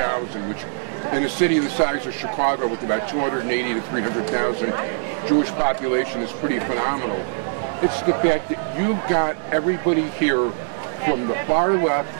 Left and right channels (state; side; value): silent; left; digital silence